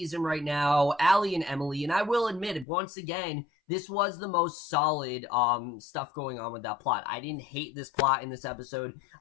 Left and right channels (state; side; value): drops out; right; at 2.7 s